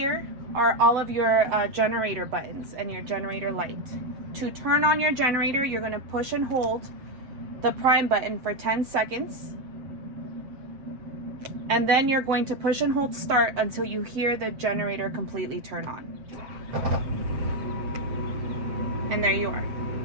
are all of your generator buttons and your generator light. To turn on your generator, you're going to push and hold the prime button for 10 seconds. And then you're going to push and hold start until you hear the generator completely turn on. And there you are.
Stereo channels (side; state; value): left; late; 7.6 ms